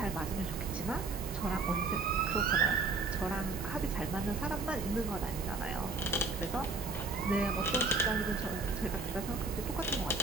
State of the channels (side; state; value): left; quieter; 3.9 dB